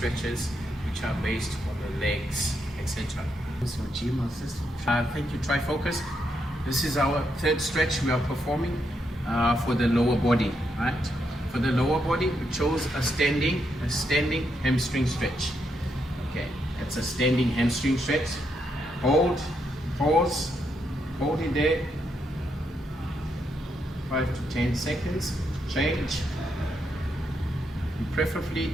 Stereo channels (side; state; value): both; normal; correlation 0.79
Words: which are based on the legs, etc. Thank you, Trifocus. This is our third stretch we are performing for the lower body. Right. For the lower body, we chose a standing hamstring stretch. Okay, it's a standing hamstring stretch. Hold, pause, hold it there. 5 to 10 seconds. Change. You preferably